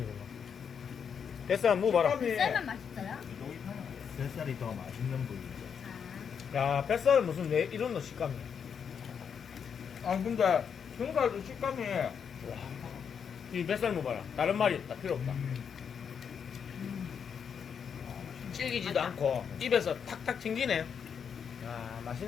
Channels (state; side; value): quieter; right; 7.1 dB